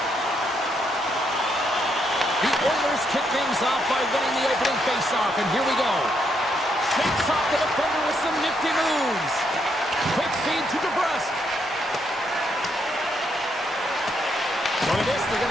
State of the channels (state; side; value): normal; both; correlation 0.76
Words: The Oilers kick things off by winning the opening faceoff, and here we go. Shakes off the defender with some nifty moves. Quick feed to DeBrusque. Look at this, they're going